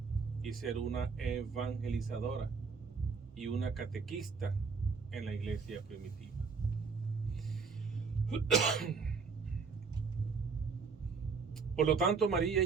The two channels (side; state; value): left; quieter; 5.2 dB